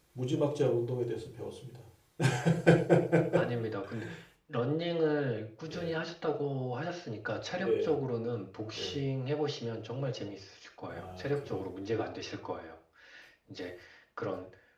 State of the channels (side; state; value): both; identical; correlation 1.00